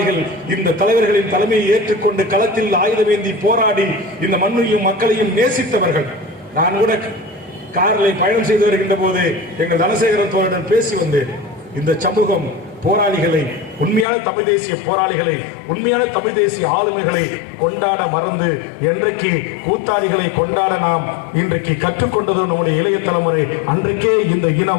இந்த தலைவர்களின் தலைமையை ஏற்றுக்கொண்டு களத்தில் ஆயுதமேந்தி போராடி இந்த மண்ணையும் மக்களையும் நேசித்தவர்கள். நான் கூட காரில் பயணம் செய்து வருகின்ற போது எங்கள் தனசேகரன் தோழருடன் பேசி வந்தேன். இந்த சமூகம் போராளிகளை, உண்மையான தமிழ் தேசிய போராளிகளை, உண்மையான தமிழ் தேசிய ஆளுமைகளை கொண்டாட மறந்து என்றைக்கு கூத்தாடிகளை கொண்டாட நாம் இன்றைக்கு கற்றுக்கொண்டது நம்முடைய இளைய தலைமுறை. அன்றைக்கே இந்த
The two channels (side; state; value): right; drops out; at 14.1 s